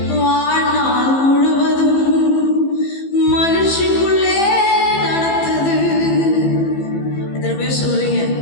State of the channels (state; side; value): late; right; 15 ms